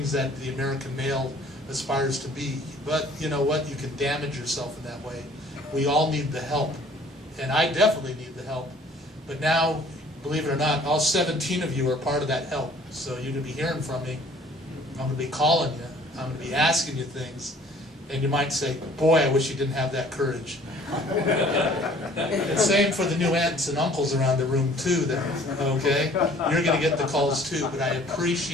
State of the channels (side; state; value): both; normal; correlation 0.54